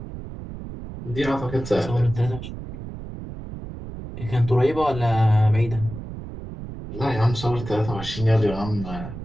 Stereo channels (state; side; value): noise; right; rumble, 10 dB below the sound